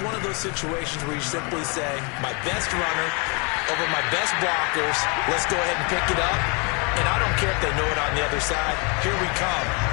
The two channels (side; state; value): right; quieter; 32.8 dB